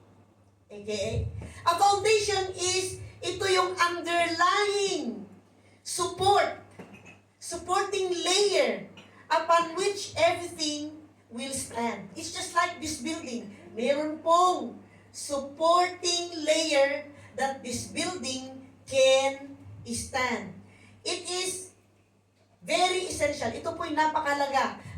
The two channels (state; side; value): identical; both; correlation 1.00